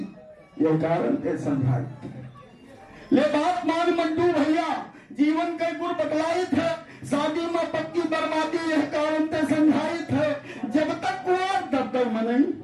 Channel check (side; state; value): both; identical; correlation 1.00